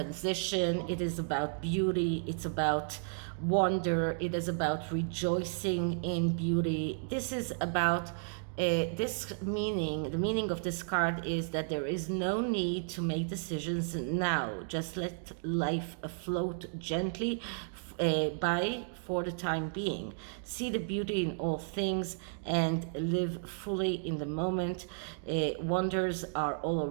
it is about beauty, it's about wonder, it is about rejoicing in beauty. This is about the meaning of this card is that there is no need to make decisions now. Just let life float gently by for the time being. See the beauty in all things and live fully in the moment. Wonders are all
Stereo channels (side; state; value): left; silent; digital silence